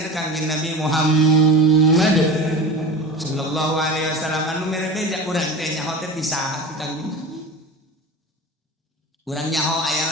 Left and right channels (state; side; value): normal; both; correlation 0.31